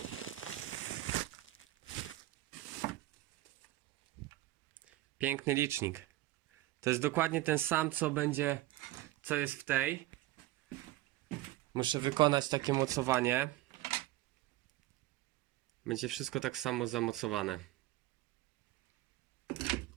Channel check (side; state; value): left; quieter; 16.6 dB